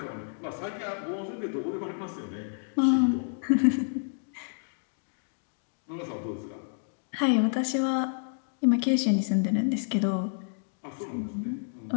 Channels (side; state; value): right; silent; digital silence